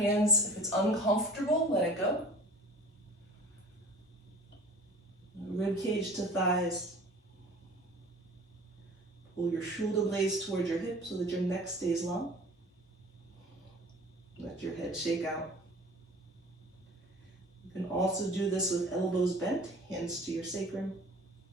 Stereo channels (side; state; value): both; normal; correlation 0.43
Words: If it's uncomfortable, let it go. Rib cage to thighs. Pull your shoulder blades towards your hips so that your neck stays long. Let your head shake out. You can also do this with elbows bent, hands to your sacrum.